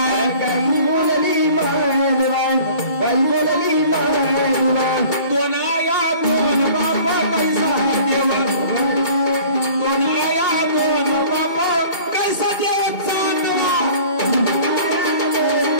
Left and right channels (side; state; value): right; late; 2.3 ms